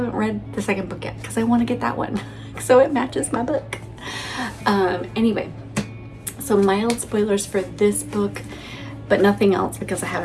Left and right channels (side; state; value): both; identical; correlation 1.00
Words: read the second book yet because I want to get that one so it matches my book. Anyway, so mild spoilers for this book, but nothing else because I